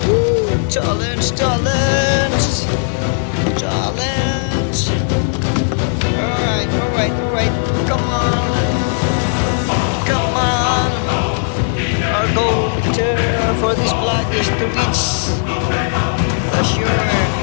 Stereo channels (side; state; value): right; silent; digital silence